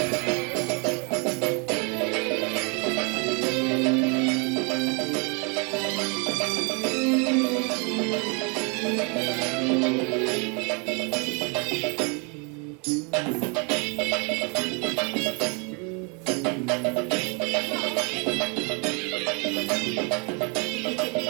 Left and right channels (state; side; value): quieter; left; 34.1 dB